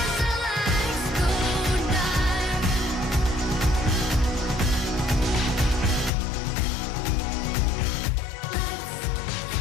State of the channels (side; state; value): right; drops out; at 6.1 s